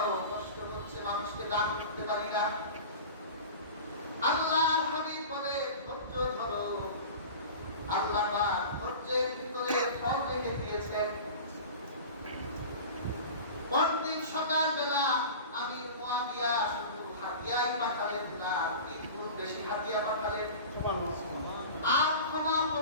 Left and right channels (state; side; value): inverted; both; correlation -0.35